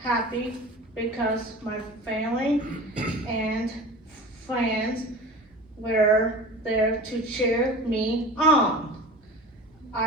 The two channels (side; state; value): both; normal; correlation 0.36